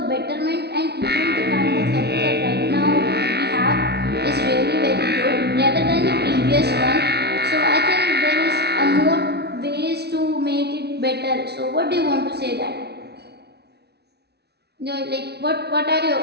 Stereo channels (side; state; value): left; late; 0.48 ms